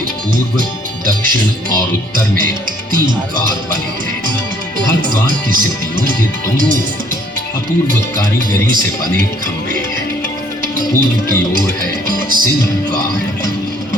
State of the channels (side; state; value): both; normal; correlation 0.61